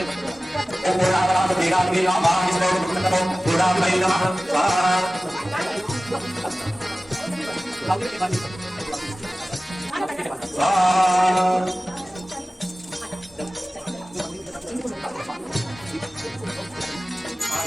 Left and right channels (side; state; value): both; normal; correlation 0.97